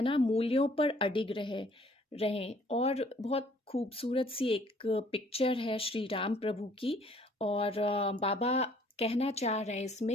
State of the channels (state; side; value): normal; both; correlation 0.59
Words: ना, मूल्यों पर अडिग रहें। और बहुत खूबसूरत सी एक पिक्चर है श्री राम प्रभु की। और बाबा कहना चाह रहे हैं